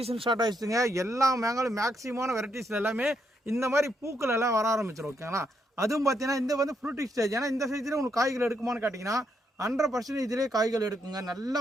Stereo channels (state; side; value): normal; both; correlation 0.78